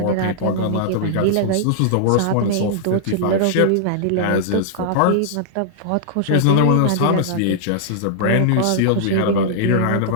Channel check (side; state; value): both; different; correlation -0.01